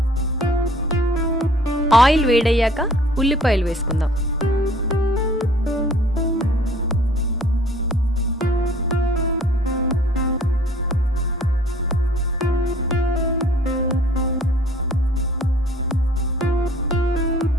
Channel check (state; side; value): normal; both; correlation 0.54